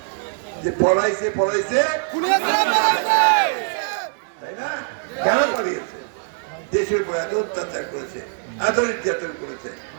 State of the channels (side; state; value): left; silent; 62 dB below the other